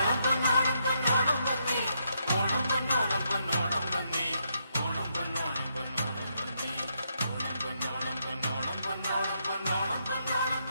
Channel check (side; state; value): both; inverted; correlation -0.78